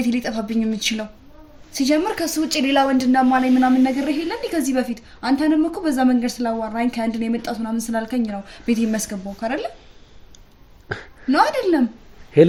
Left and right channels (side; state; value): both; identical; correlation 1.00